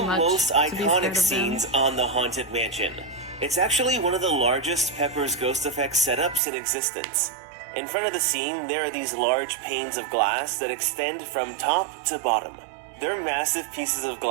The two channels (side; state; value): left; drops out; at 6.4 s